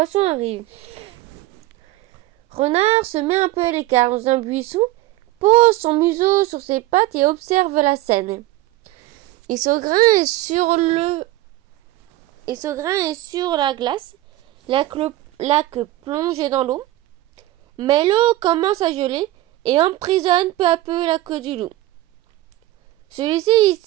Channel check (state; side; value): quieter; left; 16.4 dB